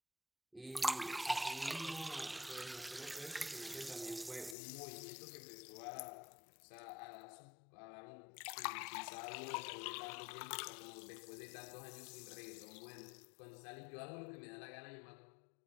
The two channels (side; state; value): right; drops out; at 4.5 s